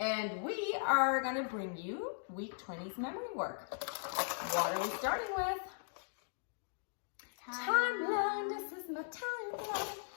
we are going to bring you Week 20's memory work. What are we starting with? Timeline. This is my timeline.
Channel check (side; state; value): right; silent; digital silence